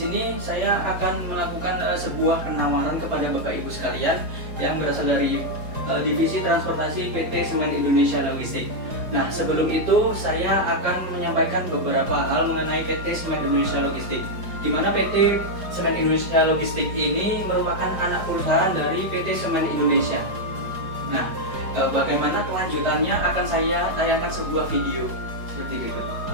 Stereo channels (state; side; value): late; left; 4.9 ms